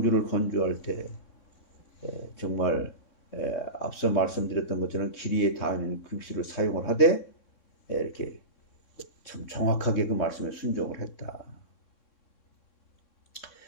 건조할 때 정말 앞서 말씀드렸던 것처럼 길이에 닿는 급수를 사용을 하되 이렇게 참 정확하게 그 말씀에 순종을 했다.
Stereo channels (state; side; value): late; right; 3.6 ms